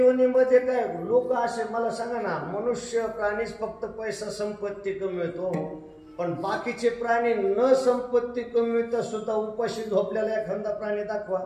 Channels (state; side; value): identical; both; correlation 1.00